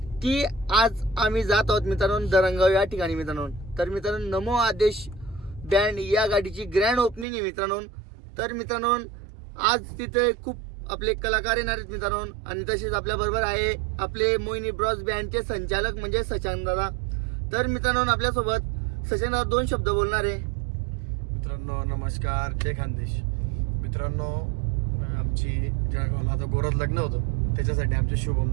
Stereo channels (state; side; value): drops out; left; at 7.2 s